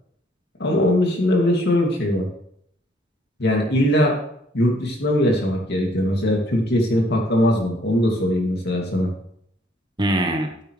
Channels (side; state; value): both; normal; correlation 0.64